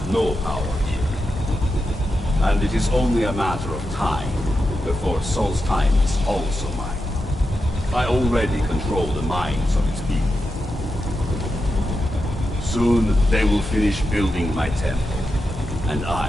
no power here. And it is only a matter of time before Solstheim is also mine. I already control the minds of its people. Soon they will finish building my temple, and I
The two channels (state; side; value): normal; both; correlation 0.88